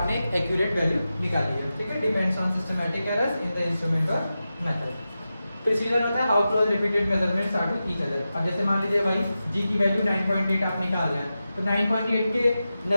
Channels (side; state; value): both; inverted; correlation -0.92